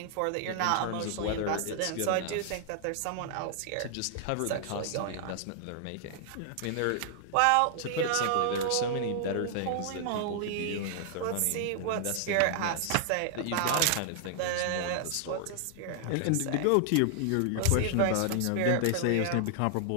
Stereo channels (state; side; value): different; both; correlation -0.01